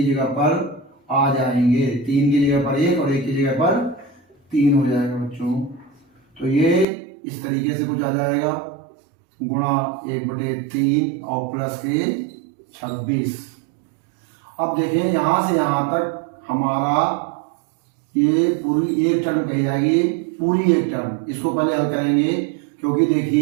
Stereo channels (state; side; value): drops out; left; at 6.9 s